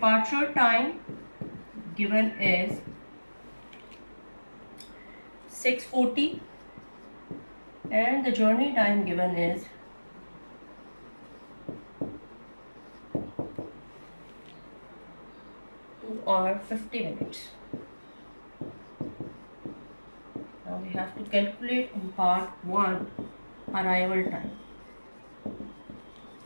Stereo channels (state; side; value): inverted; both; correlation -1.00